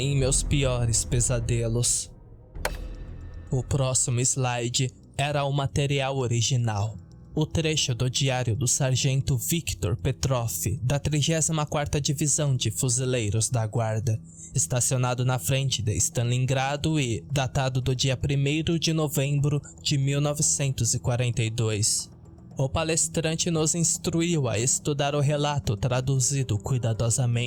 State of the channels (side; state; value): both; identical; correlation 1.00